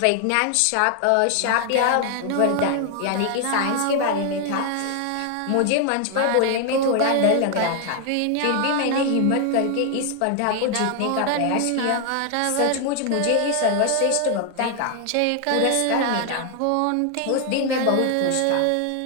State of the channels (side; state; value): both; different; correlation 0.00